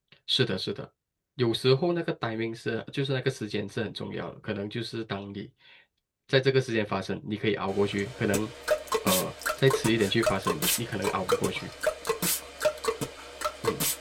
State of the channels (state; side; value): identical; both; correlation 1.00